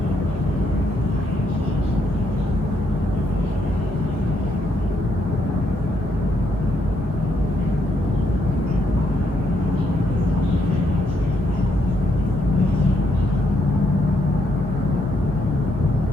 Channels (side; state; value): both; normal; correlation 0.75